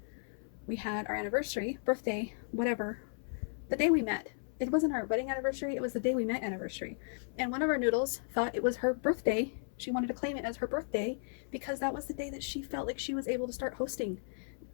We had our anniversary, birthday, whatever, the day we met. It wasn't our wedding anniversary, it was the day we met anniversary. And one of our noodles thought it was her birthday. She wanted to claim it as her birthday because that was the day that she felt like she was able to start hosting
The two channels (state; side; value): silent; right; 55 dB below the other